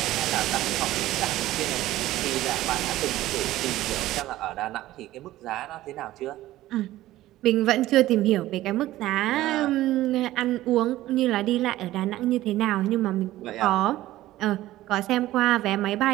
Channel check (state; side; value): quieter; left; 15.5 dB